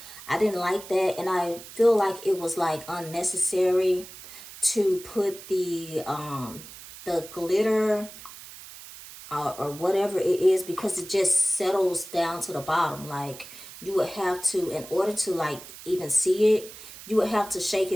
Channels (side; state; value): right; noise; hiss, 15 dB below the sound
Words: I didn't like that, and I feel like it was like unnecessary to put the glitter or whatever it is, because it just settles down to the bottom. Like you would have to, in order to like even see it, you would have to shake